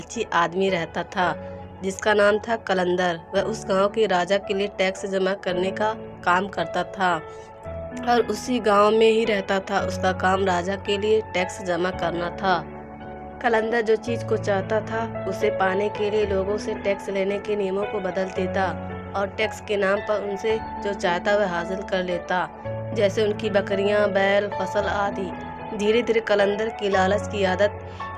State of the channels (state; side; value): identical; both; correlation 1.00